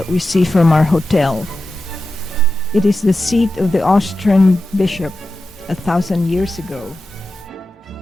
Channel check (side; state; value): both; normal; correlation 0.91